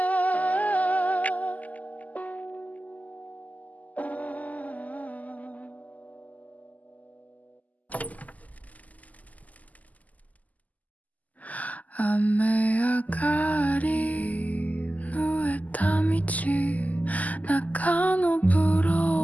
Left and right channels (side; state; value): right; late; 0.077 ms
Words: 雨上がり濡れた道中のブ